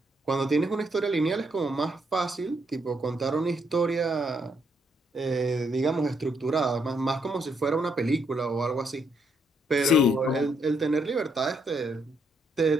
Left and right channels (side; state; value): both; normal; correlation 0.74